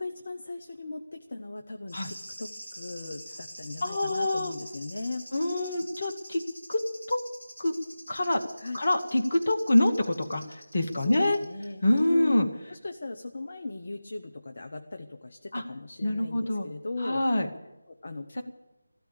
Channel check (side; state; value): both; inverted; correlation -0.96